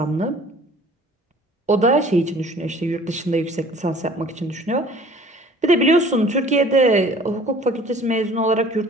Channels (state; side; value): normal; both; correlation 0.50